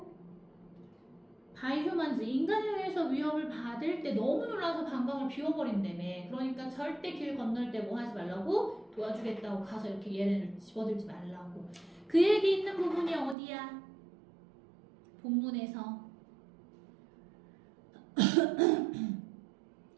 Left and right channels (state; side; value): drops out; left; at 13.4 s